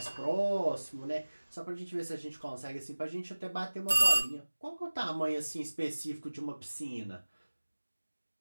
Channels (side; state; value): both; inverted; correlation -1.00